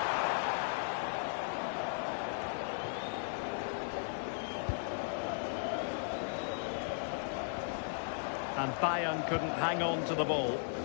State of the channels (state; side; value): silent; right; digital silence